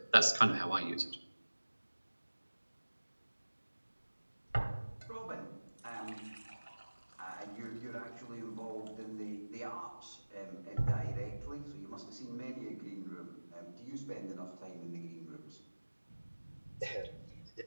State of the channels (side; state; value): both; inverted; correlation -1.00